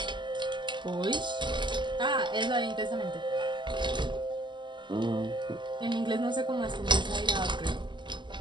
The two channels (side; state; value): left; late; 0.22 ms